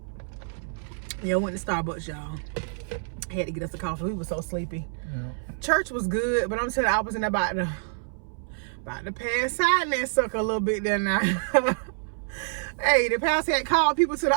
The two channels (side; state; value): left; silent; 60 dB below the other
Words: Yeah, I went to Starbucks, y'all. I had to get us a coffee. We were so sleepy. Yeah. Church was good, but I'm telling you, I was in about to pass out in that sucker a little bit there now. Hey, the pastor had called people to